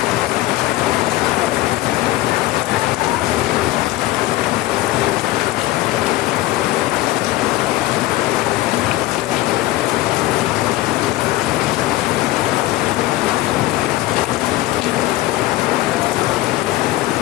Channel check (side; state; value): right; quieter; 16.7 dB